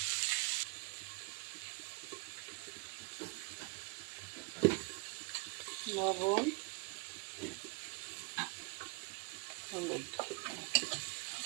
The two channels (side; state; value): left; quieter; 30.6 dB